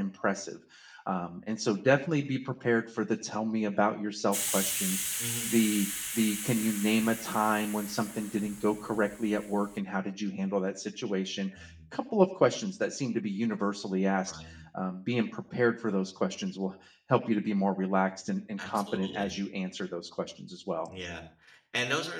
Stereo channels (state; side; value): identical; both; correlation 1.00